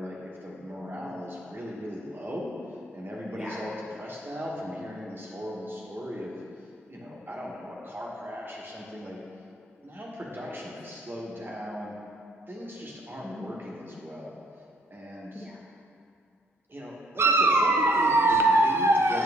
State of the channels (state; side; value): normal; both; correlation 0.65